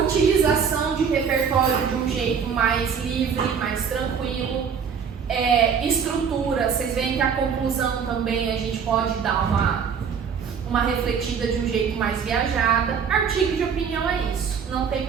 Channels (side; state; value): left; quieter; 6.7 dB